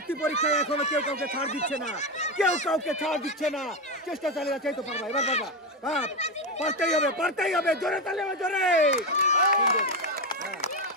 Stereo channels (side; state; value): both; normal; correlation 0.11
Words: পরীক্ষায় এখনো কেউ কাউকে ছাড় দিচ্ছে না, কেউ কাউকে ছাড় দিচ্ছে না। চেষ্টা চালিয়ে যাচ্ছে। এই তো পারবা, এবার পারবা। পারতেই হবে, পারতেই হবে। জোরে চালিয়ে হবে, জোরে।